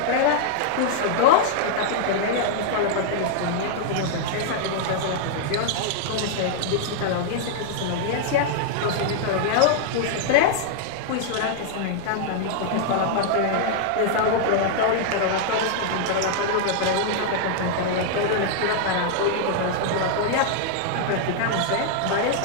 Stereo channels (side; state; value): both; different; correlation -0.01